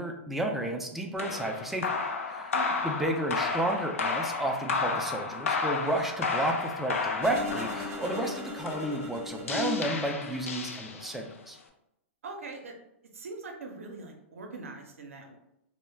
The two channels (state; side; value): normal; both; correlation 0.22